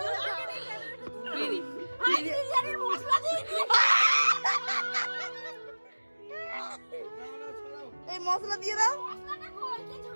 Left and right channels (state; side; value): inverted; both; correlation -1.00